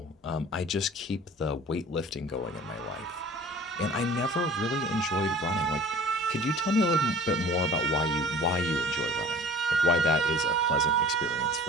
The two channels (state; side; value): normal; both; correlation 0.44